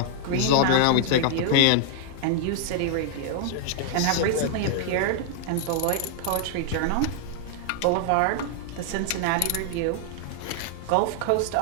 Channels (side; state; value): both; different; correlation -0.01